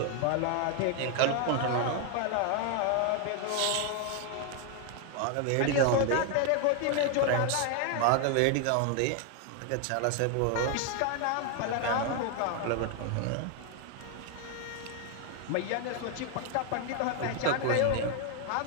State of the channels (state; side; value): different; both; correlation 0.00